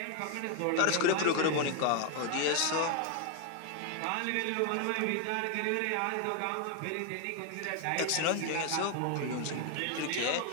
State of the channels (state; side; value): different; both; correlation 0.01